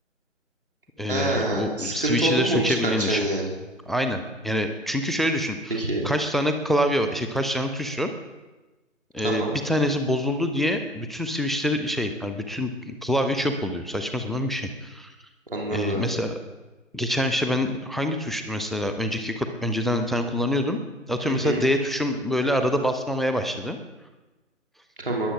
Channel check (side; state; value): both; normal; correlation 0.49